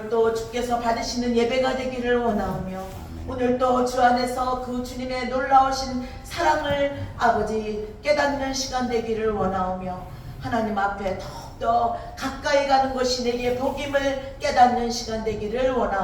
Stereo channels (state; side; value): identical; both; correlation 1.00